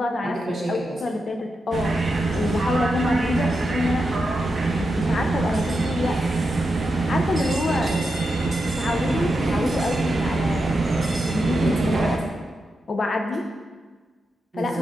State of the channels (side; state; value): both; normal; correlation 0.87